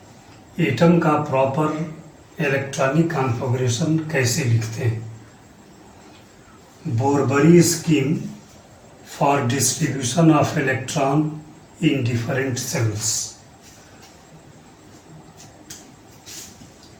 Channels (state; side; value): identical; both; correlation 1.00